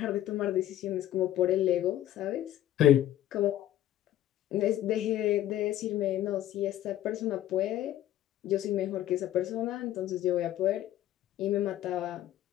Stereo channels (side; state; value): right; quieter; 12.8 dB